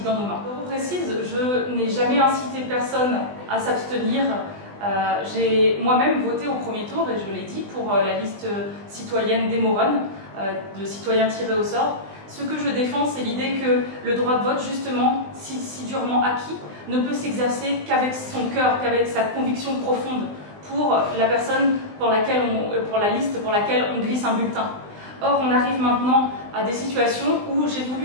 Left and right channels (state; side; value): late; left; 20 ms